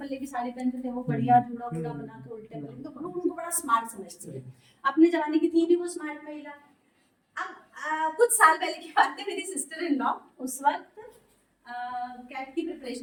की साड़ी पहनते थे, वो बढ़िया जूड़ा बूढ़ा बना के उल्टे पल्ले, तो लोग उनको बड़ा स्मार्ट समझते थे। अपने जमाने की थी भी वो स्मार्ट महिला। अब कुछ साल पहले की बात है, मेरी सिस्टर इन लॉ उस वक्त कैट की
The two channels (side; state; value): both; identical; correlation 1.00